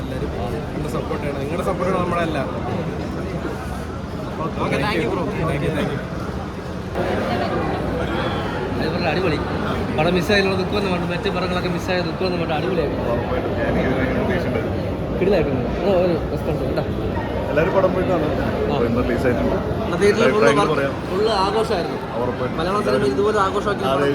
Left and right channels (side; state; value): both; identical; correlation 1.00